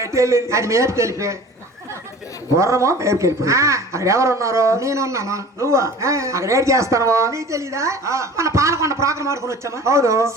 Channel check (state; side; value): normal; both; correlation 0.42